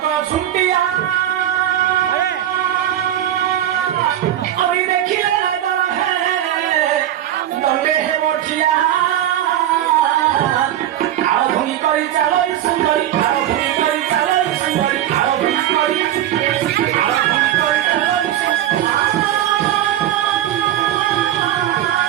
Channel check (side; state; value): left; quieter; 11.9 dB